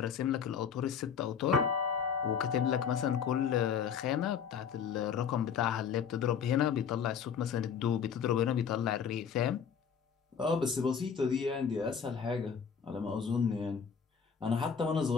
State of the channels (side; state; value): right; quieter; 7.1 dB